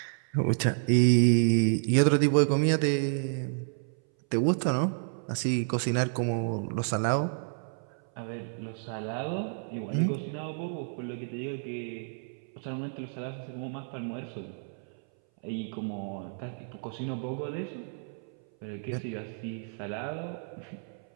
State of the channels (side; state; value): left; silent; 58 dB below the other